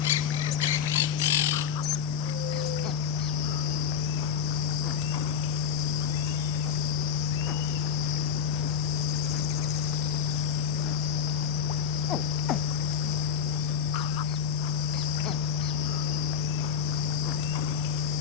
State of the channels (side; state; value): right; quieter; 7.3 dB